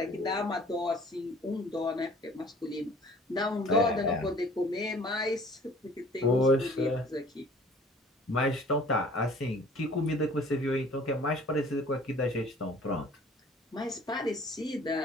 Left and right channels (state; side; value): normal; both; correlation 0.50